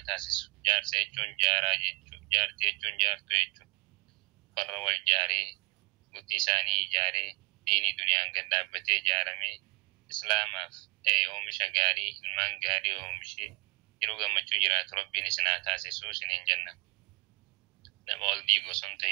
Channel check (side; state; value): left; quieter; 26.8 dB